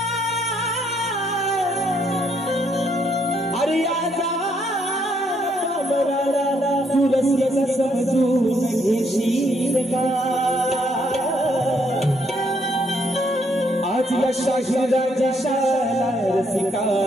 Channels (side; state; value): both; normal; correlation 0.72